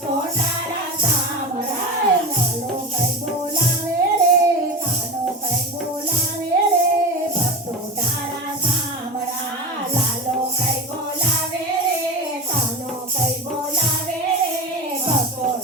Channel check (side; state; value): both; normal; correlation 0.27